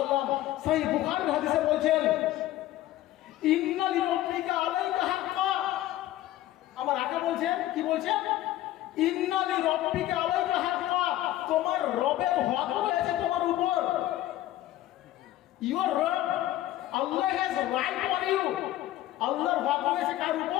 সহিহ বুখারীর হাদিসে বলছেন ইন্না লিরাব্বিকা আলাইকা হাক্কা। আমার আকা বলছেন, কি বলছেন? ইন্না লিরাব্বিকা আলাইকা হাক্কা, তোমার রবের হক রয়েছে তোমার উপর। ইওর রব, আল্লাহ হ্যাজ রাইট অন ইউ, আল্লাহর হক রয়েছে কার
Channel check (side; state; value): right; quieter; 14.4 dB